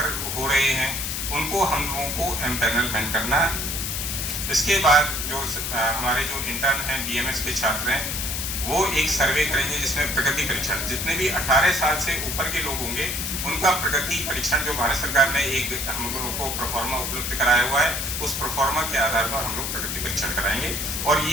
हो रहे हैं, उनको हम लोगों को एम्पैनलमेंट करना। इसके बाद जो हमारे जो इंटर्न हैं, BMS के छात्र हैं, वो एक सर्वे करेंगे जिसमें प्रगति परीक्षण, जितने भी 18 साल से ऊपर के लोग होंगे उनका प्रगति परीक्षण जो भारत सरकार ने एक हम लोगों को प्रोफार्मा उपलब्ध कराया हुआ है, उस प्रोफार्मा के आधार पर हम लोग प्रगति परीक्षण कराएंगे। और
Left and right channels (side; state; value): left; noise; hiss, 2 dB below the sound